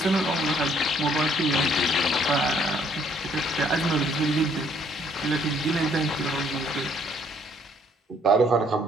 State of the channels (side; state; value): both; normal; correlation 0.64